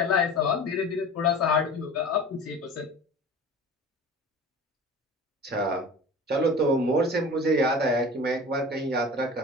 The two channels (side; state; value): both; normal; correlation 0.38